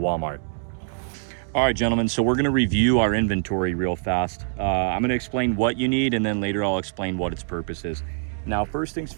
All right, gentlemen, so we're gonna review our inventory real fast. I'm gonna explain what you need, and then later I'll explain what its purpose is. Now, first things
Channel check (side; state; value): left; silent; 62 dB below the other